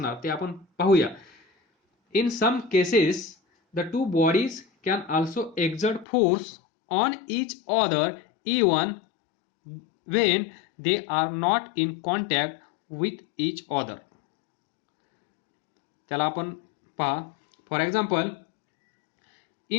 ते आपण पाहूया. In some cases the two bodies can also exert force on each other even when they are not in contact with each other. त्याला आपण पहा, for example,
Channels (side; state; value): right; drops out; at 6.1 s